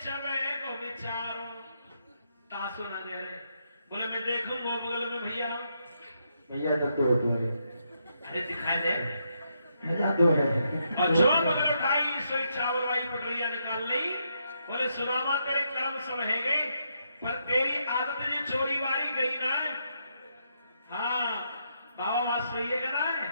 चवे को विचारो। तासो ना दे रहे। बोले मैं देखूंगा बगल में भैया। भैया तब तो होता है। अरे दिखाई दे मजा तो है। और जो बगल उठाई सोई चावल वाली पटरिया निकाल ली। बोले सुदामा तेरे कर्म सब है गए, पर तेरी आदत जो चोरी वारी गई ना। हाँ बाबा बात सही है ना है।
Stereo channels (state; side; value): inverted; both; correlation -0.79